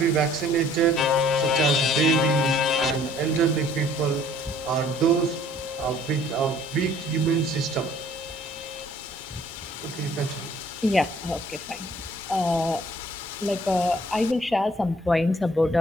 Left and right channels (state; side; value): normal; both; correlation 0.57